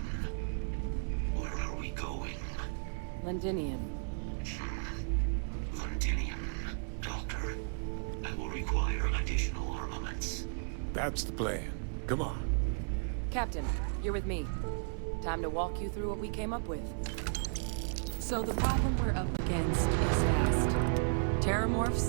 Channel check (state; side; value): silent; left; 55 dB below the other